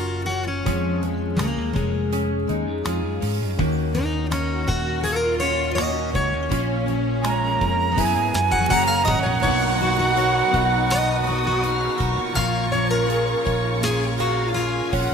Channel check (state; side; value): normal; both; correlation 0.62